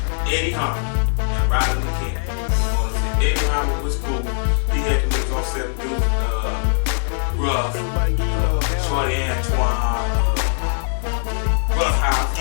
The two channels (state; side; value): silent; right; 65 dB below the other